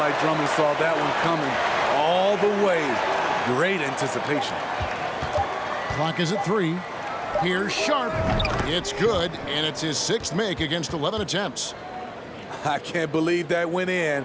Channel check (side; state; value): both; identical; correlation 1.00